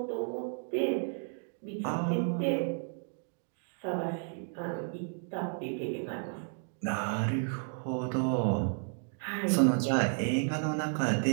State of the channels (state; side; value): silent; left; 56 dB below the other